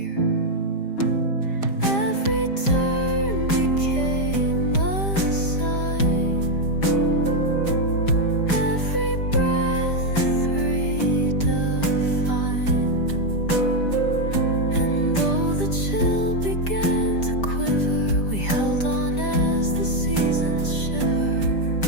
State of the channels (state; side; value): late; right; 5.0 ms